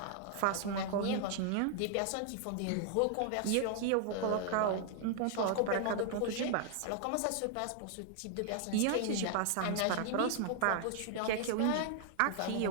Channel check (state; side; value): different; both; correlation 0.00